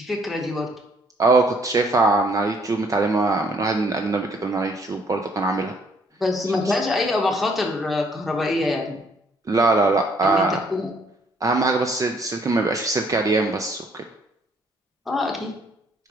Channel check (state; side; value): normal; both; correlation 0.64